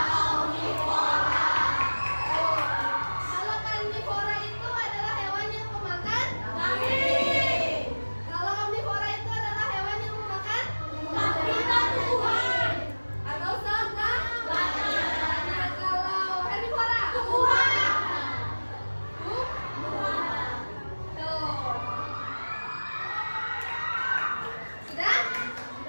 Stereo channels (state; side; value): inverted; both; correlation -1.00